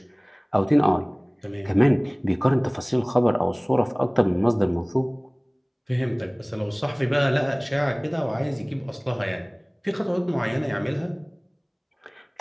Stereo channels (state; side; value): identical; both; correlation 1.00